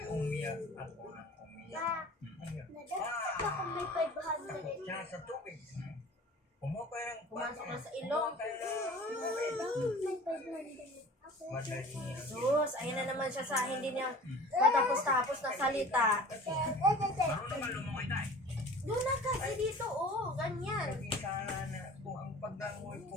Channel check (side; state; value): both; normal; correlation 0.43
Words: umiyak ako ng umiyak. Baka may 500. Siya sa tubig. Pumakay ng Pumasok na sa ilong. Pumakay ng May 500. madali. Diyos, ayun na naman siya sa hindi niya matapos-tapos na salita. Marunong naman lumungoy tayo. Doon na kasi dito, oh, ganyan. Sabi sana na kung ang pagdangoy